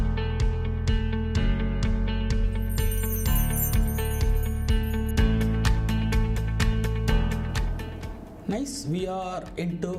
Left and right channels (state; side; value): identical; both; correlation 1.00